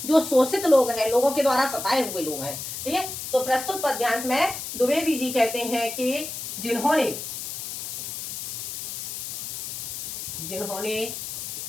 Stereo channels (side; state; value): left; noise; hiss, 6 dB below the sound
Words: जो शोषित लोग हैं, लोगों के द्वारा सताए हुए लोग हैं। ठीक है, तो प्रस्तुत पद्यांश में द्विवेदी जी कहते हैं कि